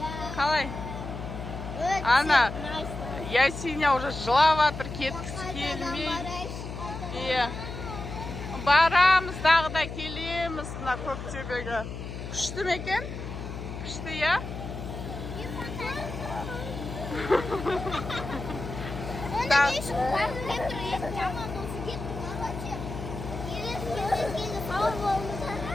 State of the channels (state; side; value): noise; left; hum, 8 dB below the sound